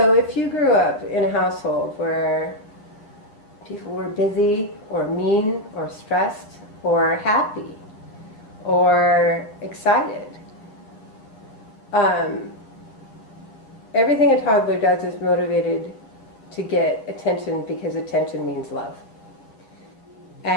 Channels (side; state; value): right; late; 10 ms